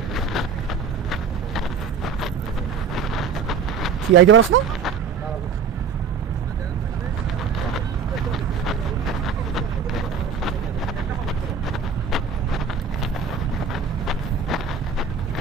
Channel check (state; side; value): quieter; left; 5.9 dB